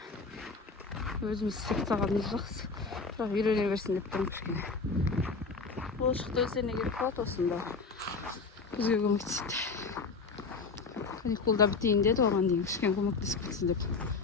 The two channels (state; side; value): quieter; right; 4.4 dB